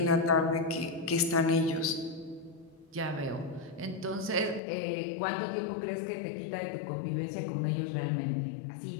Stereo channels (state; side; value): drops out; right; at 4.6 s